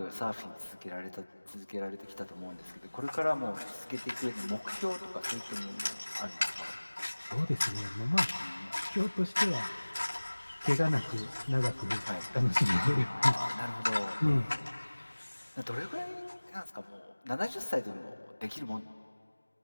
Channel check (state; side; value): inverted; both; correlation -1.00